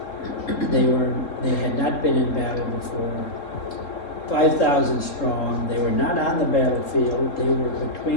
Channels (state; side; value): late; right; 3.7 ms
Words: They had not been in battle before. 5,000 strong. They were not on the battlefield. They were